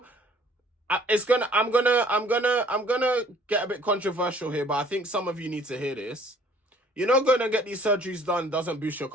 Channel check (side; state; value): both; normal; correlation 0.57